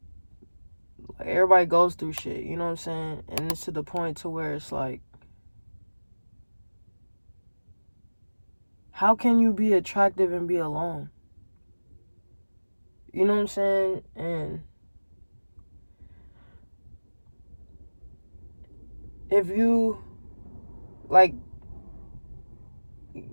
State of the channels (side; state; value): both; inverted; correlation -1.00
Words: everybody goes through shit. You know what I'm saying? And it's to the point to where it's like, how can you be attractive and be alone? You know what I'm saying? And if you, like,